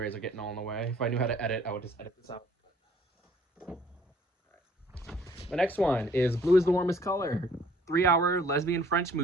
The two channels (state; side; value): normal; both; correlation 0.57